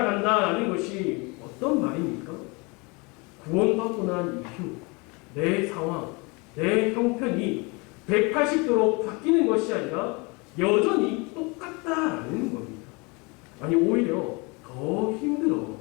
것이 어떤 말입니까? 구원받고 난 이후 내 상황, 내 형편이 180도로 바뀌는 것이 아니라 여전히 똑같다라는 겁니다. 아니 오히려 더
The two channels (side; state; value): right; quieter; 28.5 dB